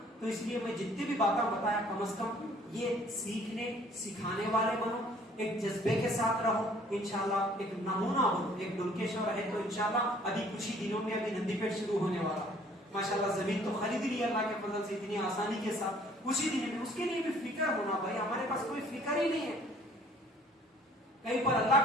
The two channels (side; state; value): both; normal; correlation 0.57